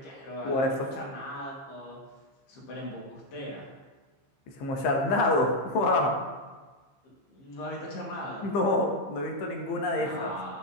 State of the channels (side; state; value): right; late; 15 ms